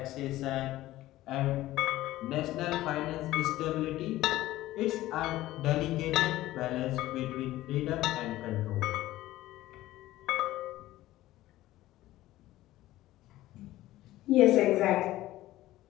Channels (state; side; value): quieter; right; 15.9 dB